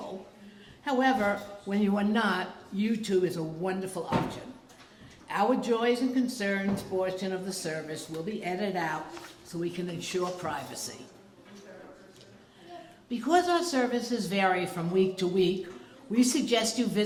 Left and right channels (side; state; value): both; identical; correlation 1.00